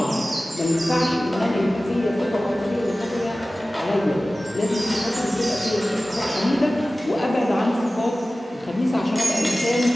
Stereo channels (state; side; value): normal; both; correlation 0.97